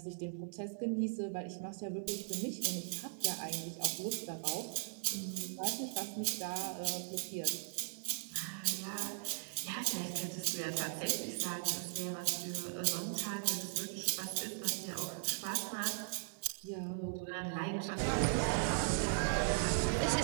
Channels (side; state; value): left; silent; 52 dB below the other